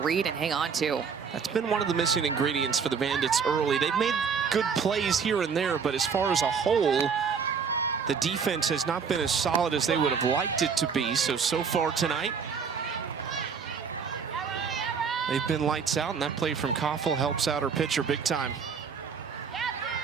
and hang on to. That's been one of the missing ingredients for the Bandits early. They've made good plays here and there, but as far as a whole, the defense has not been as solid as they would have liked it to be. So far tonight, they've been lights out, and that play from Koffel helps out her pitcher big time.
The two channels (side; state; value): left; quieter; 6.2 dB